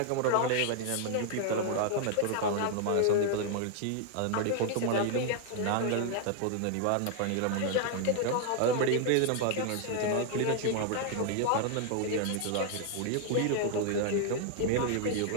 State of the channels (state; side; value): different; both; correlation 0.00